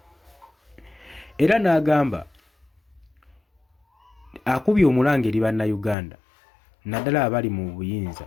Era n'agamba akubye omulanga eri bannayuganda naddala abali mu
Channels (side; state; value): right; drops out; at 6.0 s